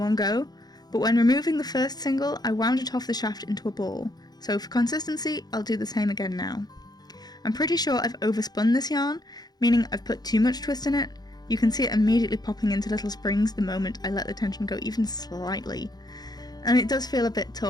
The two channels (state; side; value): late; right; 0.19 ms